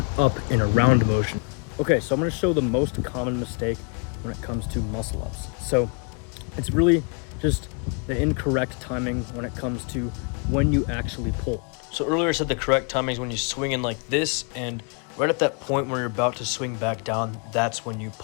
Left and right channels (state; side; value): quieter; right; 35.5 dB